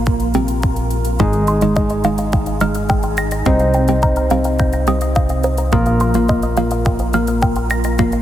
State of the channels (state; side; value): normal; both; correlation 0.87